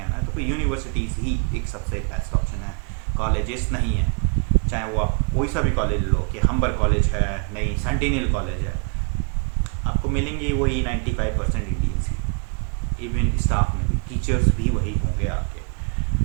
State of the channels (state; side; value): quieter; left; 39.9 dB